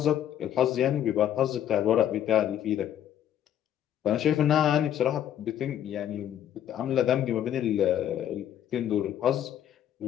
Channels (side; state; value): right; quieter; 10.7 dB